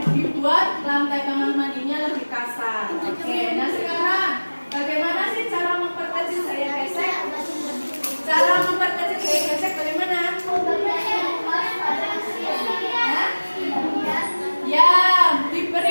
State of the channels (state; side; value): inverted; both; correlation -1.00